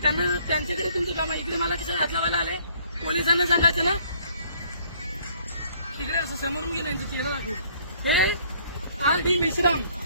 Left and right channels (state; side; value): inverted; both; correlation -0.61